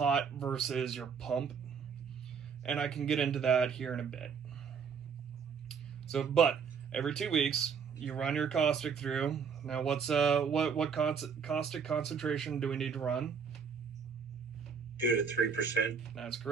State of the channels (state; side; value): quieter; left; 6.3 dB